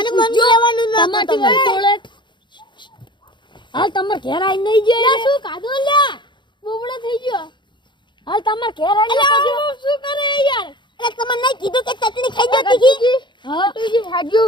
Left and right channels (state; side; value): late; right; 0.23 ms